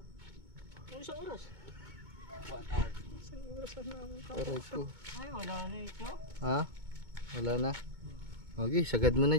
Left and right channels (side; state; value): left; late; 2.2 ms